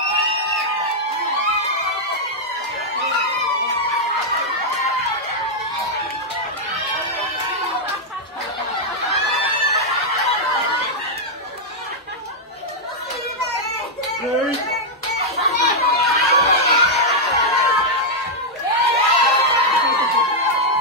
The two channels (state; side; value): normal; both; correlation -0.04